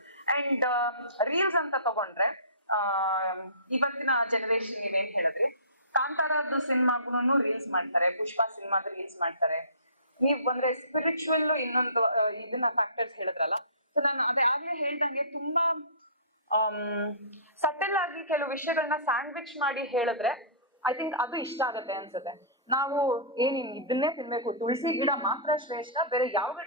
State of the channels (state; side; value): inverted; both; correlation -0.38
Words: And reels ಅಂತ ತಗೊಂಡ್ರೆ ಇವತ್ತಿನ ಜನರೇಷನ್ ನೀವೇನ್ ಹೇಳಿದ್ರಿ, ಕಾಂತಾರದ್ದು ಸಿನಿಮಾಗೂ ರೀಲ್ಸ್ ಮಾಡ್ತಾರೆ, ಪುಷ್ಪ ಸಿನಿಮಾದ ರೀಲ್ಸ್ ಮಾಡ್ತಾರೆ. ನೀವ್ ಬಂದ್ರೆ ಸ್ಪಿರಿಚುವಲ್ ಇನ್ನೊಂದು ಇದನ್ನ ಫ್ಯಾಕ್ಟರ್ಸ್ ಹೇಳಿದ್ರಲ್ಲ, ಸೊ ನಾನು ಅದೇ ಆಗ್ಲೇ ಹೇಳ್ದಂಗೆ ತುಂಬಾ ಸಟಲ್ ಆಗಿ ಕೆಲವು ವಿಷಯಗಳನ್ನ ಸ್ಯಾಂಡ್ವಿಚ್ ಮಾಡಿ ಹೇಳಿದ್ರೆ ಐ ಥಿಂಕ್ ಅದು ಇಷ್ಟ ಆಗತ್ತೆ ಅನ್ಸುತ್ತೆ. ನಾವು ಇದನ್ನೇ ತಿನ್ಬೇಕು, ತುಳಸಿ ಗಿಡ ಮಾತ್ರ ಶ್ರೇಷ್ಠ, ಬೇರೆ ಯಾವ